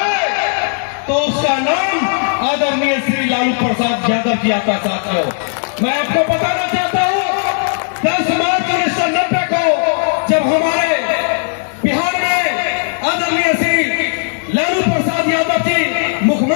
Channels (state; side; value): silent; right; digital silence